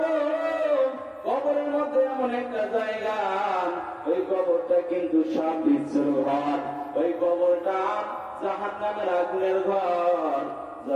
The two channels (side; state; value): both; identical; correlation 1.00